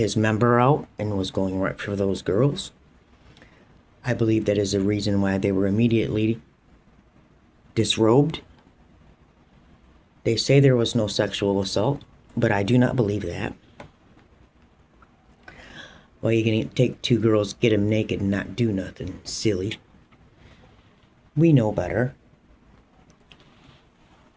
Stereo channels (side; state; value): both; identical; correlation 1.00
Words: member out and was going right for those girls. I believe that is the reason why they were immediately disrobed. They say there was no sexual assault, but I do not believe that. Well, you can take two girls, get them naked, and not do nothing. Silly. We know better.